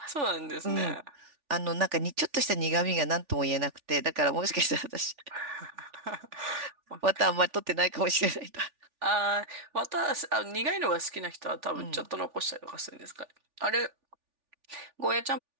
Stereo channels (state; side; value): late; left; 3.4 ms